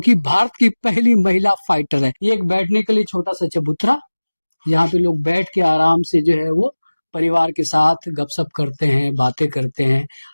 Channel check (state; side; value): inverted; both; correlation -1.00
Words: भारत की पहली महिला फाइटर है। ये एक बैठने के लिए छोटा सा चबूतरा, यहाँ पे लोग बैठ के आराम से जो है वो परिवार के साथ गपशप करते हैं, बातें करते हैं,